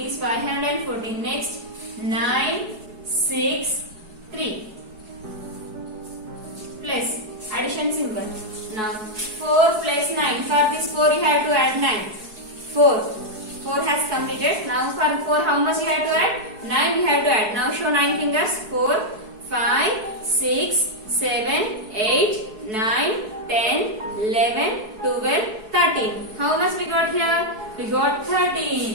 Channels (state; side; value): late; left; 4.7 ms